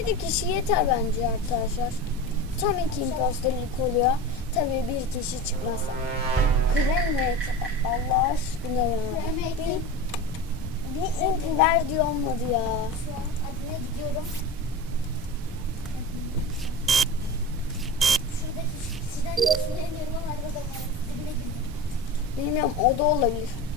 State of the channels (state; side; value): normal; both; correlation 0.29